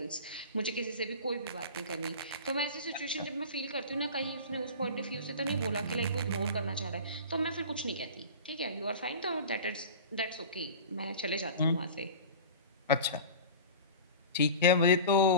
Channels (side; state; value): both; inverted; correlation -0.35